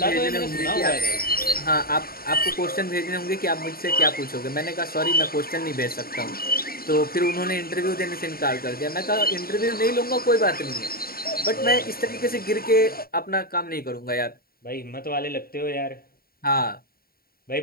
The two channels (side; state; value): right; late; 0.43 ms